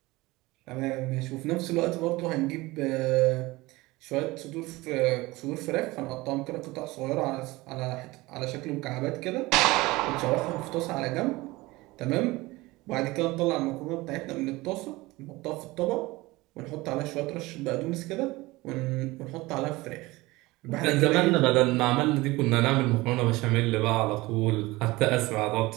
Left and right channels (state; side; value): quieter; left; 20.9 dB